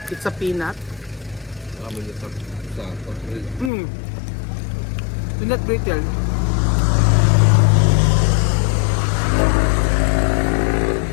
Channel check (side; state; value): right; drops out; at 3.7 s